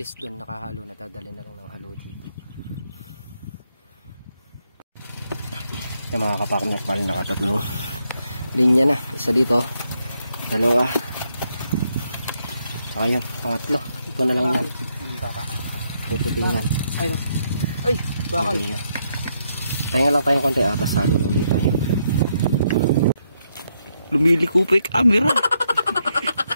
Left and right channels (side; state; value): both; inverted; correlation -0.77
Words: doon nakahalo na, dadali na lang ng halo dito. Yung mga kapakner pa rin nakatatlong linya na. Isa dito, dalawa, saka yun, pangatlo. Ito na lang yan. Puputingan. Ay, bakal. Tayo lang tayong konti atas halo na ulit tayo. Lumiliko pa yung camera.